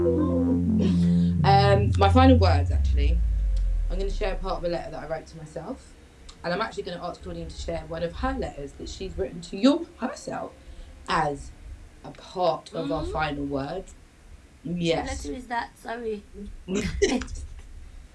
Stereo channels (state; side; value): identical; both; correlation 1.00